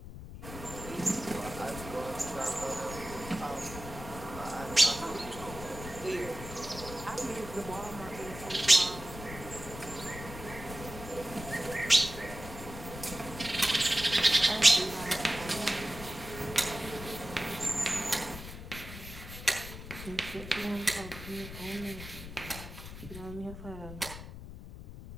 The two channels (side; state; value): left; noise; rumble, 11 dB below the sound